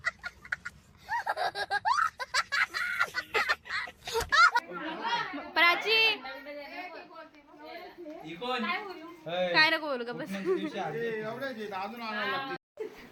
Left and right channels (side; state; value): both; identical; correlation 1.00